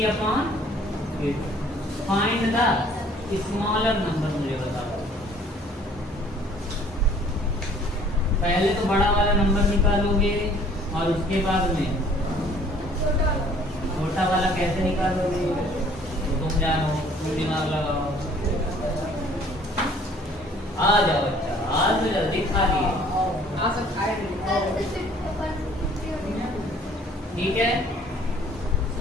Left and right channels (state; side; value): normal; both; correlation 0.56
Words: Find the smaller number, मुझे बताओ। पहले तो बड़ा वाला नंबर निकालोगे और उसके बाद में छोटा वाला कैसे निकालोगे? तो तुम जानो, तुम दिमाग लगाओ। आ जाओ बच्चा, आज तो जल्दी खा लिए। ठीक है,